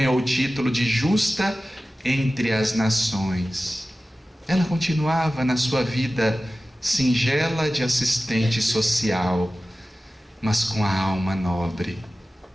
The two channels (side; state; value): both; normal; correlation 0.95